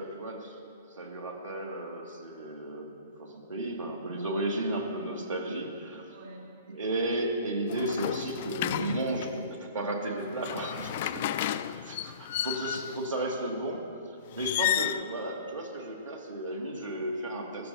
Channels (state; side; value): inverted; both; correlation -0.43